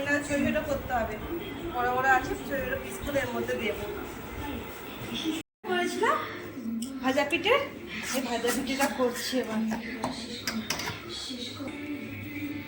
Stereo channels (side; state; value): both; identical; correlation 1.00